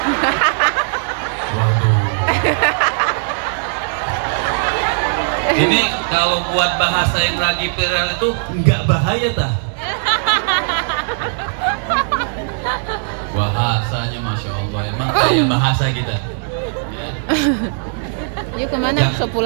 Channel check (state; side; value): silent; left; digital silence